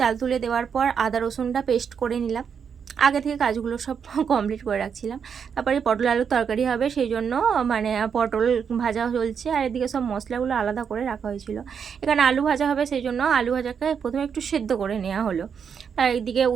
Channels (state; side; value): quieter; left; 7.0 dB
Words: তুলে দেওয়ার পর আদা রসুনটা পেস্ট করে নিলাম। আগে থেকে কাজগুলো সব কমপ্লিট করে রাখছিলাম। তারপরে পটল আলুর তরকারি হবে, সেই জন্য পটল ভাজা চলছে, আর এদিকে সব মশলাগুলো আলাদা করে রাখা হয়েছিল। এখানে আলু ভাজা হবে, সেই জন্য আলু ভাজাকে প্রথমে একটু সেদ্ধ করে নেওয়া হলো। আর এইদিকে